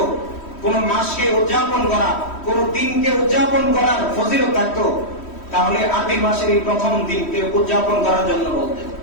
কোন মাসকে উদযাপন করা, কোন দিনকে উদযাপন করার ফজিলত থাকতো, তাহলে আরবি মাসের এই প্রথম দিনকে উদযাপন করার জন্য বলতেন।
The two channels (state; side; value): late; right; 3.1 ms